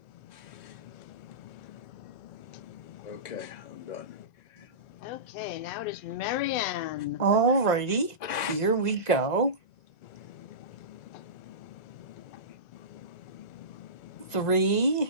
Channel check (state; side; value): late; right; 1.9 ms